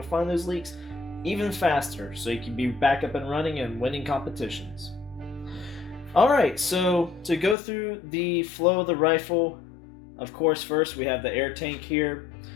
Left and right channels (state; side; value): drops out; right; at 7.6 s